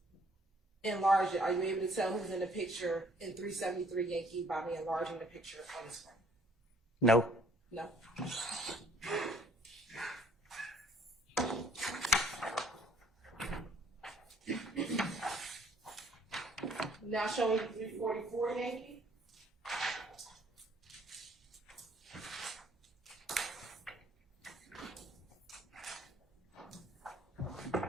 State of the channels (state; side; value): normal; both; correlation 0.61